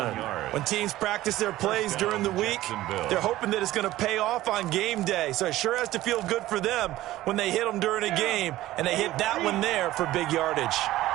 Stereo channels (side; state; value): left; quieter; 15.7 dB